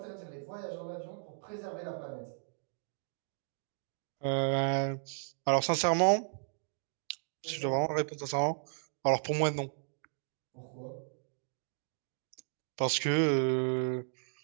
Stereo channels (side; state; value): left; silent; digital silence